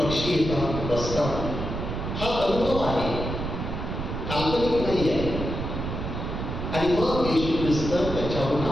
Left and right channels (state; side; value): noise; right; rumble, 5 dB below the sound